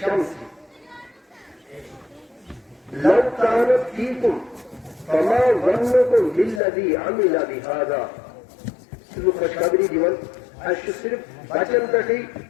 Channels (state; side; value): drops out; right; at 6.6 s